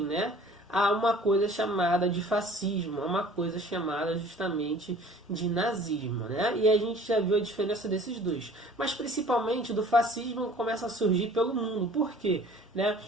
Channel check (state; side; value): normal; both; correlation 0.49